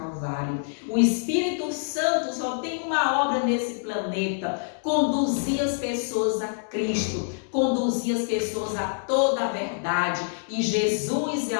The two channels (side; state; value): right; silent; digital silence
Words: O Espírito Santo só tem uma obra nesse planeta: conduzir as pessoas a Cristo, conduzir as pessoas a toda a verdade. E Jesus é